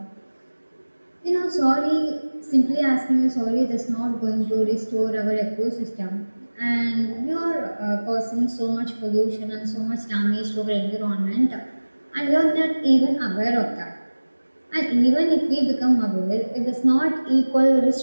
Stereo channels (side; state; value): both; inverted; correlation -1.00